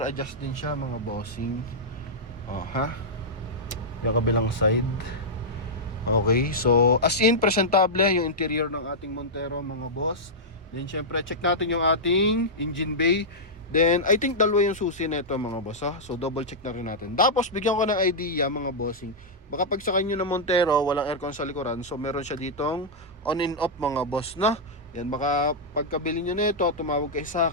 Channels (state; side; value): normal; both; correlation -0.09